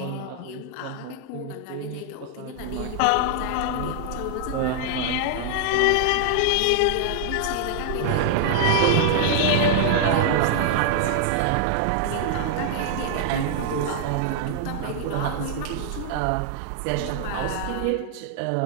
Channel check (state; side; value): different; both; correlation -0.01